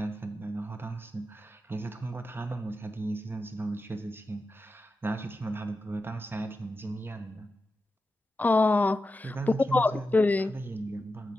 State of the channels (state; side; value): normal; both; correlation 0.90